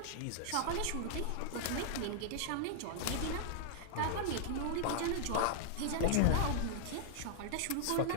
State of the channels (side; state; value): both; different; correlation -0.01